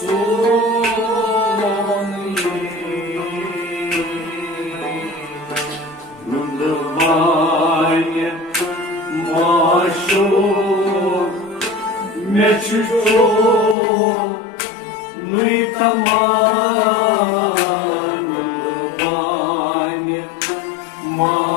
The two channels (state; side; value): drops out; right; at 13.8 s